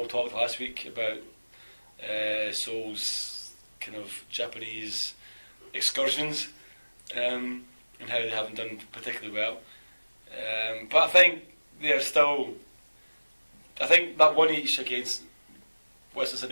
talked last week about Seoul's kind of Japanese excursions and how they haven't done particularly well. But I think they're still. I think that one each against Western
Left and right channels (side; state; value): both; inverted; correlation -1.00